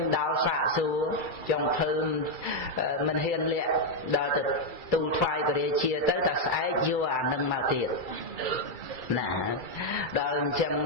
ដោលសាកសួរចុងភើមិនហ៊ានលាក់ដល់ទៅទូលថ្វាយព្រះរាជាទៅតែស្អែកយកអានឹងមកទៀតណាដល់អញ្ចឹង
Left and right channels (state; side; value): late; right; 2.3 ms